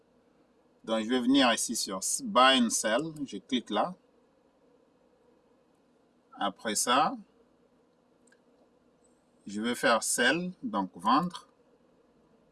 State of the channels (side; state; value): both; identical; correlation 1.00